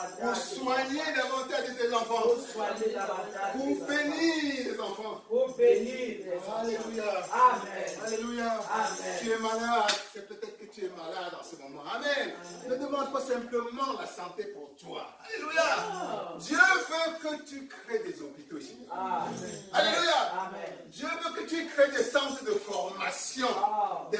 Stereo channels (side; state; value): both; identical; correlation 1.00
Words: soigner davantage tes enfants. Pour soigner davantage. Pour bénir les enfants. Pour bénir les enfants. Alléluia. Amen. Alléluia. Amen. Tu es malade. C'est peut-être que tu es malade en ce moment. Amen. Ne demande pas simplement la santé pour toi. Alléluia. Dieu veut que tu crées des hôpitaux ici. Amen. Alléluia. Amen. Dieu veut que tu crées des centres de formation des